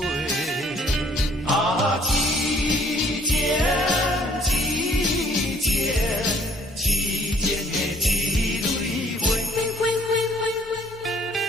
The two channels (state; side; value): normal; both; correlation 0.60